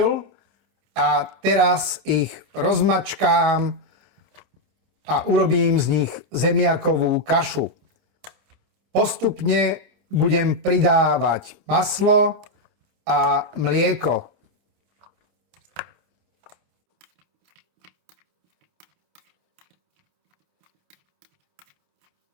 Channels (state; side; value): late; left; 28 ms